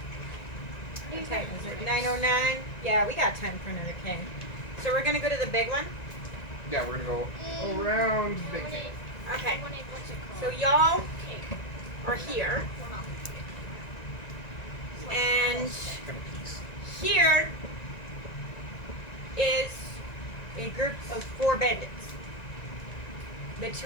What time is it? 9:09? Yeah, we got time for another cave. So we're gonna go to the big one? Yeah, we're gonna go around the big cave. Okay. What's it So called? y'all Cave. are here, We're not. and Gonna peace. here is a group of 4 bandits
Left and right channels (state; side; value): late; right; 1.9 ms